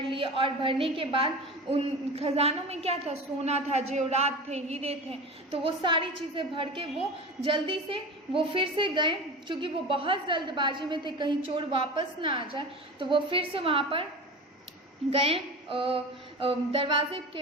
लिए, और भरने के बाद उन खजानों में क्या था? सोना था, जेवरात थे, हीरे थे। तो वो सारी चीज़ें भर के वो जल्दी से वो फिर से गए, क्योंकि वो बहुत जल्दबाजी में थे कहीं चोर वापस ना आ जाए। तो वो फिर से वहाँ पर गए दरवाजे के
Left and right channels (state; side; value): normal; both; correlation 0.31